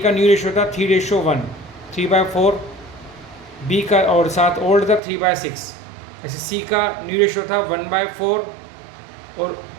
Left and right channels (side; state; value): left; drops out; at 5.0 s